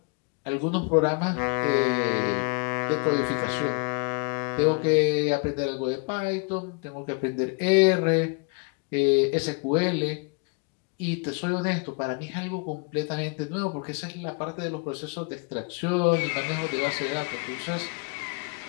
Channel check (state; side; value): quieter; right; 34.1 dB